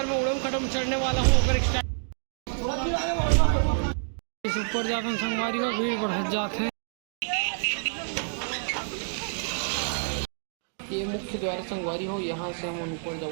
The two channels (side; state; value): left; silent; digital silence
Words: मैं उड़न खटोला चढ़ने वाला हूँ। अगर इस ऊपर जाते हैं संगवारियों भीड़ बढ़ जाते हैं। ये मुख्य द्वार संगवारी हो, यहाँ से हम ऊपर